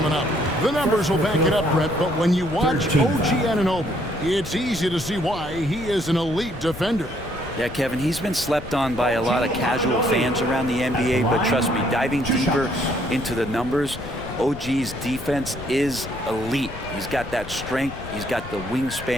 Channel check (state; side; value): noise; left; rumble, 12 dB below the sound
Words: up. The numbers will back it up, Brett, but when you watch OG Anunoby, it's easy to see why he is an elite defender. Yeah, Kevin, he's been slept on by a lot of casual fans around the NBA, but trust me, diving deeper into the numbers, OG's defense is elite. He's got that strength, he's got the